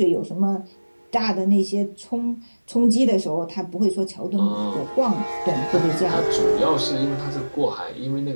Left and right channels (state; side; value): inverted; both; correlation -1.00